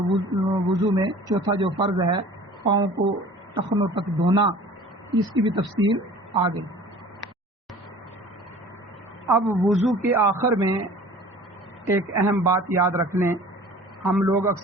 وضو میں چوتھا جو فرض ہے پاؤں کو ٹخنوں تک دھونا، اس کی بھی تفصیل آ گئی. اب وضو کے آخر میں ایک اہم بات یاد رکھ لیں، ہم لوگ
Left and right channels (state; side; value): normal; both; correlation 0.45